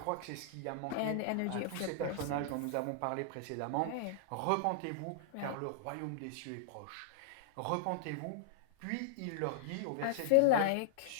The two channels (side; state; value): both; different; correlation -0.01